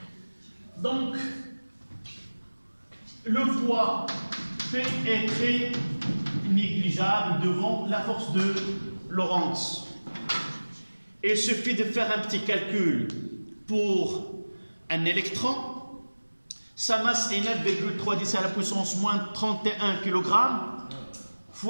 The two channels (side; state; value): both; inverted; correlation -1.00